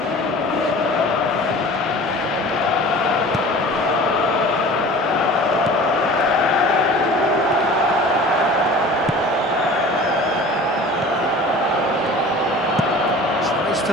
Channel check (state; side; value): normal; both; correlation 0.41